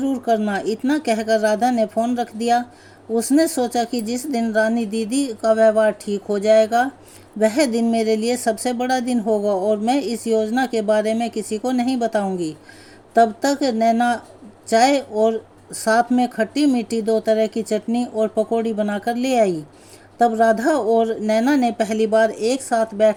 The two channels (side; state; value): both; identical; correlation 1.00